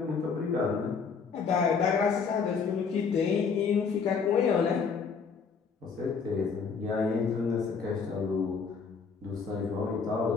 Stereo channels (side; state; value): right; quieter; 5.6 dB